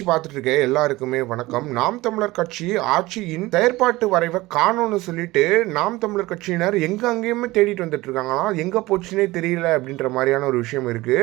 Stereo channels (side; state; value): left; quieter; 19.5 dB